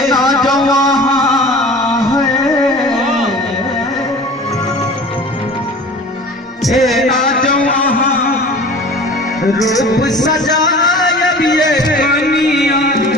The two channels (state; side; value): normal; both; correlation 0.41